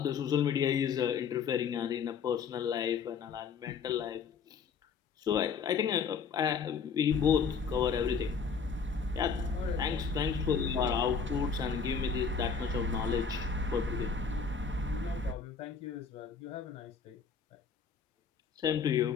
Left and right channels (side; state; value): right; quieter; 5.9 dB